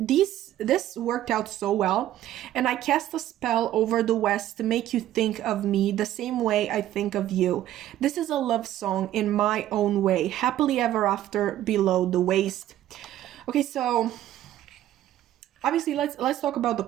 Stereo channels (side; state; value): left; quieter; 13.0 dB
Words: this worked out so well. And I cast a spell over the west to make you think of me the same way I think of you. This is a love song in my own way, happily ever after below the waist. Okay, so obviously let's talk about the